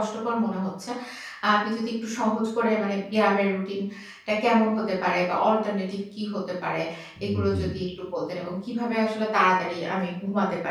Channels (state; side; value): identical; both; correlation 1.00